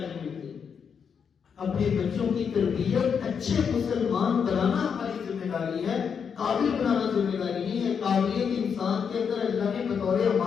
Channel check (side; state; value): right; quieter; 6.8 dB